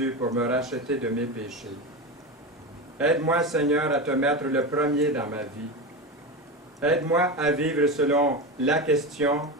pour me racheter de mes péchés. Aide-moi, Seigneur, à te mettre le premier dans ma vie. Aide-moi à vivre selon la question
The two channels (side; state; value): both; normal; correlation 0.20